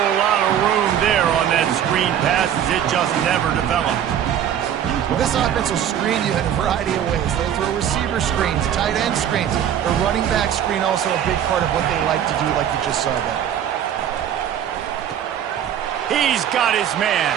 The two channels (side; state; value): left; quieter; 9.7 dB